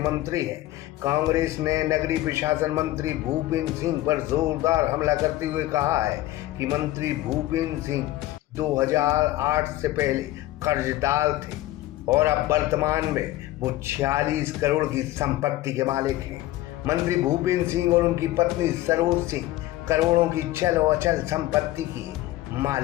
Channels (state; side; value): quieter; right; 15.8 dB